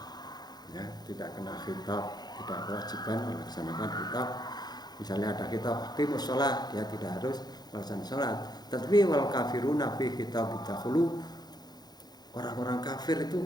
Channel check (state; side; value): late; right; 0.20 ms